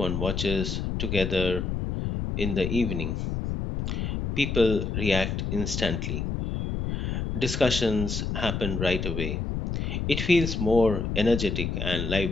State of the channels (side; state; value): left; noise; rumble, 2 dB below the sound